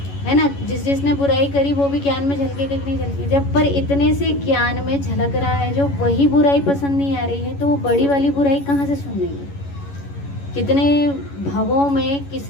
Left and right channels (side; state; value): right; late; 11 ms